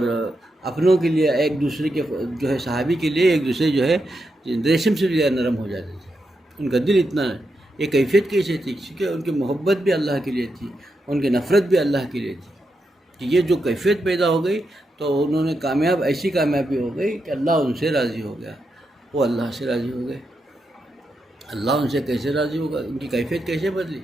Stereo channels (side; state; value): both; normal; correlation 0.85